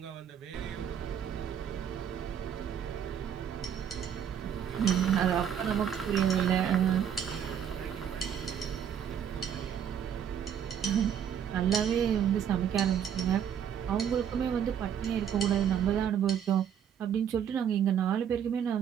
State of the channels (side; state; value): left; quieter; 8.6 dB